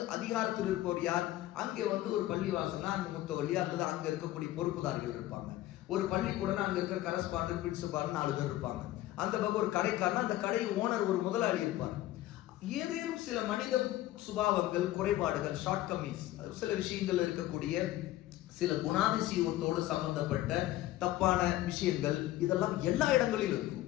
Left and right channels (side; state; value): right; quieter; 15.3 dB